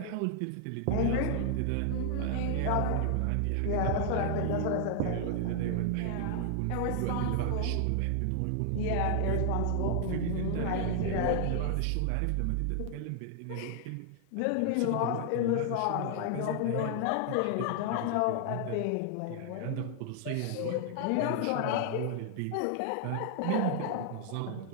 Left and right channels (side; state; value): both; different; correlation 0.00